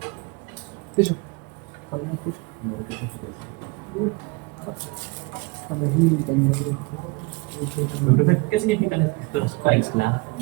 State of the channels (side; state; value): left; quieter; 26.2 dB